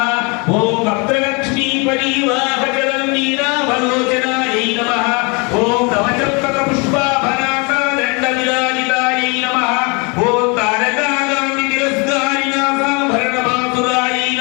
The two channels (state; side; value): quieter; right; 30.9 dB